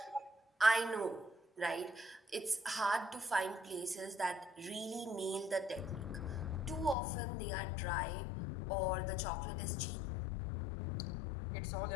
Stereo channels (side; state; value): right; drops out; at 7.0 s